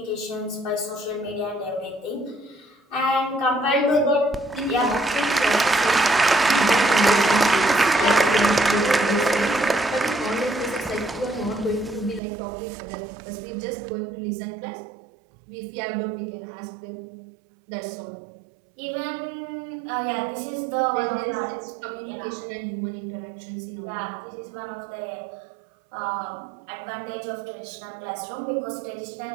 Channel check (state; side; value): drops out; left; at 12.2 s